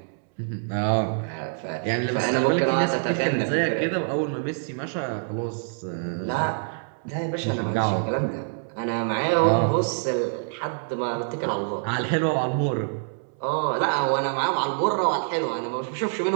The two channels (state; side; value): silent; left; 61 dB below the other